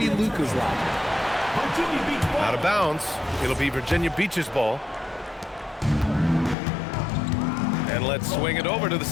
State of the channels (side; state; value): right; drops out; at 6.6 s